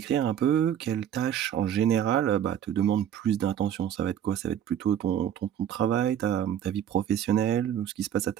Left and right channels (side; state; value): left; quieter; 9.9 dB